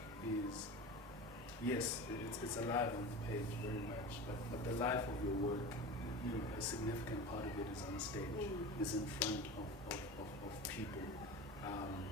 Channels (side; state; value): both; normal; correlation 0.30